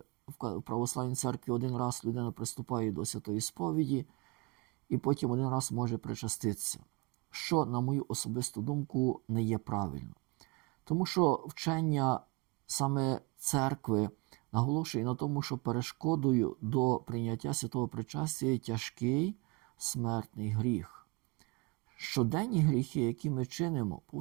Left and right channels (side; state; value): left; quieter; 27.3 dB